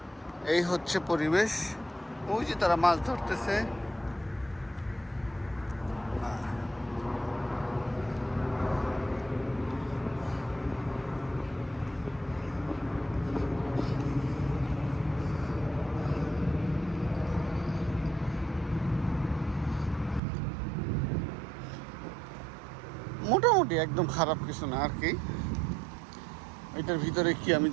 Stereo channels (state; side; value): drops out; left; at 20.2 s